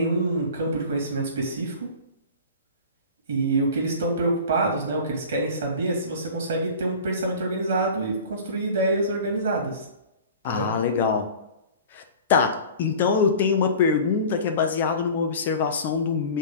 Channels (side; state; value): both; inverted; correlation -0.40